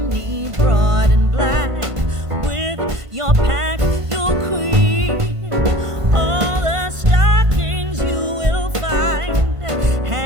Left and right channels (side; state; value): left; late; 1.5 ms